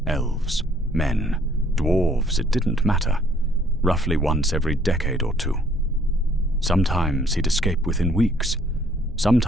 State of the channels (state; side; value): normal; both; correlation 0.62